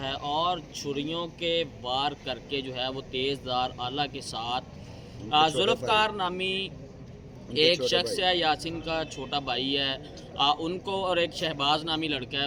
और छुरियों के वार करके जो है वो तेज़धार आला के साथ जुल्फ़कार नामी एक शख्स है, यासीन का छोटा भाई है, उनको और एक शहबाज नामी लड़का है,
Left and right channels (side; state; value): both; identical; correlation 1.00